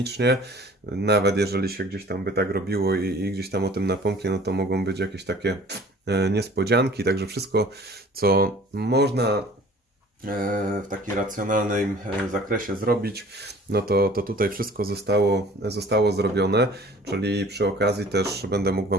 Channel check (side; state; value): both; normal; correlation 0.48